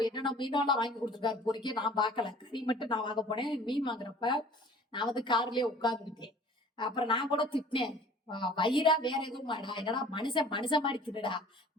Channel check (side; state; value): both; normal; correlation 0.48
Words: மீனெல்லாம் வாங்கி கொடுத்துருக்காரு பொறிக்க. நான் பார்க்கல, கறி மட்டும் நான் வாங்க போனேன். மீன் வாங்குறப்ப நான் கார்லயே உட்கார்ந்துக்கிட்டேன். அப்புறம் நான் கூட திட்டினேன், வயிறா வேற எதுவும் மாடா, என்னடா மனுஷன் மனுஷன் மாதிரி தின்னுடா,